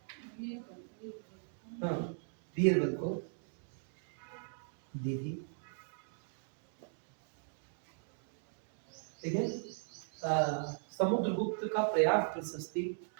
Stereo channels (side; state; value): left; silent; digital silence